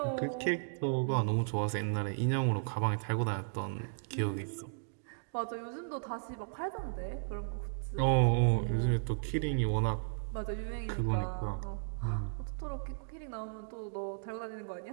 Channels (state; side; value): silent; left; digital silence